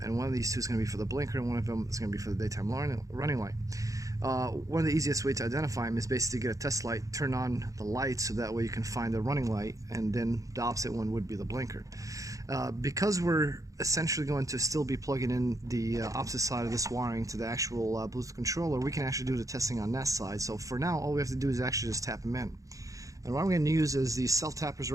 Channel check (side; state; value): left; late; 0.16 ms